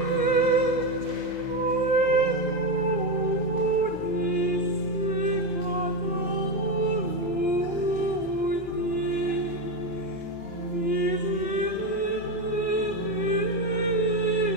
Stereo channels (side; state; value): both; normal; correlation 0.12